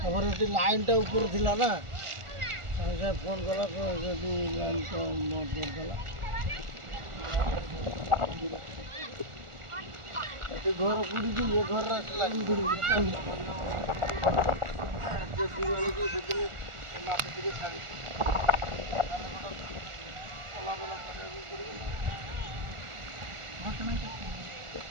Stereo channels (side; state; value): left; late; 1.4 ms